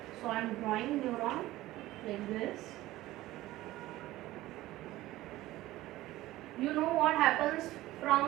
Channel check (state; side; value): quieter; left; 16.7 dB